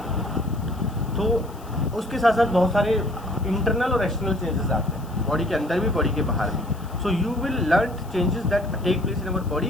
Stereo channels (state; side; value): noise; left; hiss, 24 dB below the sound